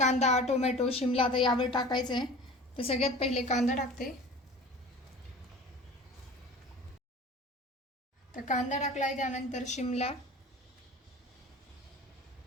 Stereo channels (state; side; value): normal; both; correlation 0.40